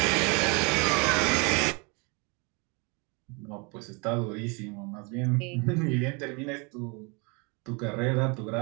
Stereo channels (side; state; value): left; quieter; 30.9 dB